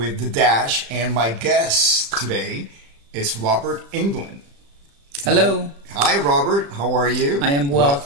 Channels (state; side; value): late; left; 35 ms